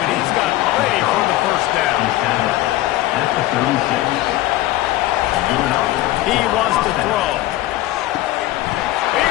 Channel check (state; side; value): quieter; right; 16.1 dB